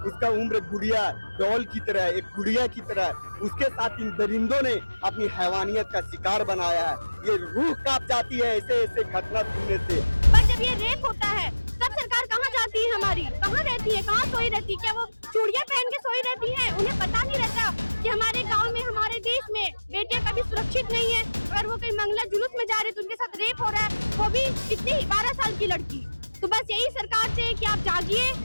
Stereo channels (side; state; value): both; inverted; correlation -1.00